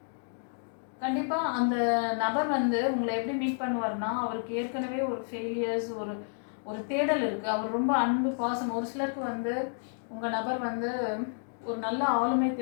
கண்டிப்பாக அந்த நபர் வந்து உங்களை எப்படி மீட் பண்ணுவார்னா, அவருக்கு ஏற்கனவே ஒரு ஃபெயிலியர்ஸ், ஒரு தேடல் இருக்குது. அவர் ரொம்ப அன்பு, பாசம். ஒரு சிலருக்கு வந்து உங்கள் நபர் வந்து ஒரு நல்ல ஆளுமை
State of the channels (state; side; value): silent; right; digital silence